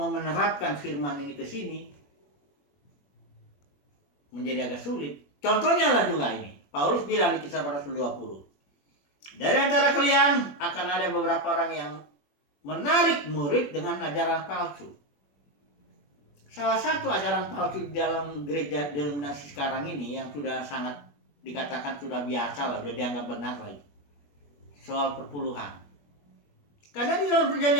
menerapkan firman ini ke sini menjadi agak sulit. Contohnya lah juga ini, Paulus bilang di Kisah Para Rasul 20, dari antara kalian akan ada beberapa orang yang menarik murid dengan ajaran palsu. Salah satu ajaran palsu di dalam gereja denominasi sekarang ini yang sudah sangat dikatakan sudah biasa lah, sudah dianggap benar lah itu, soal perpuluhan. Karena di dalam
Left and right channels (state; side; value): late; right; 21 ms